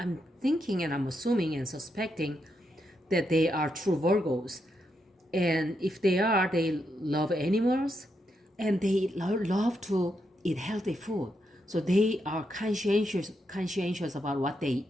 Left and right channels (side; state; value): both; normal; correlation 0.82